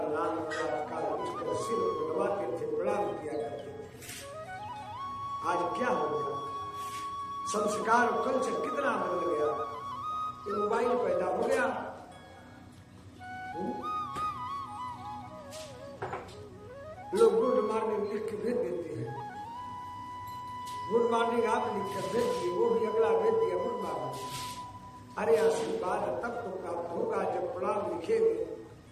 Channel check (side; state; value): both; identical; correlation 1.00